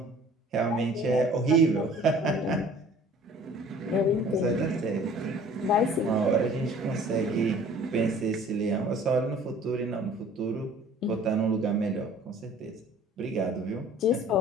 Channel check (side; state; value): both; normal; correlation 0.50